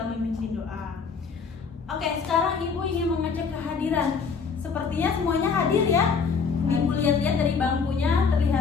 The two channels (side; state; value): right; quieter; 5.5 dB